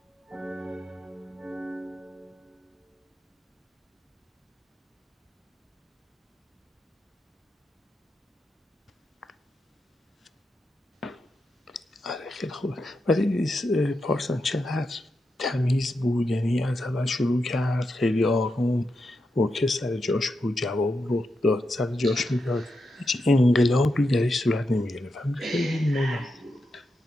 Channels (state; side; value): normal; both; correlation 0.87